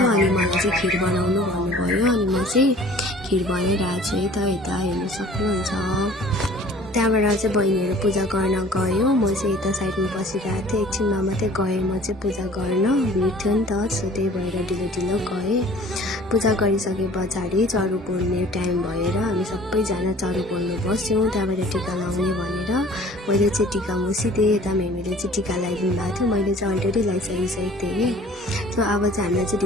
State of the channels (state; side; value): normal; both; correlation 0.50